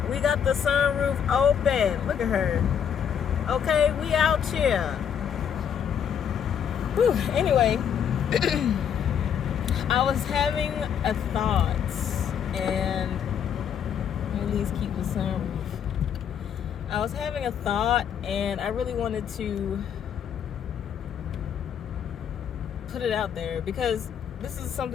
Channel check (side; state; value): right; quieter; 8.2 dB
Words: We got the sunroof open. Look at her. Okay, we out here. Whew. Anyway, I was having a thought, and at least keep the sunroof. I was having a thought, and I really wanted to put it out there because this is